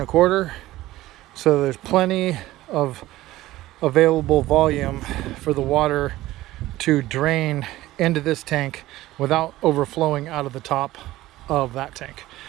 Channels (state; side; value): quieter; left; 16.4 dB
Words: inch. So there's plenty of available volume for the water to drain into this tank without overflowing out of the top of that tank.